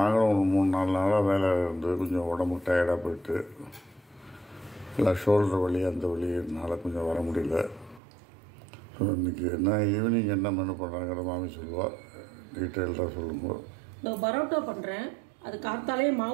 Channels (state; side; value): drops out; left; at 8.0 s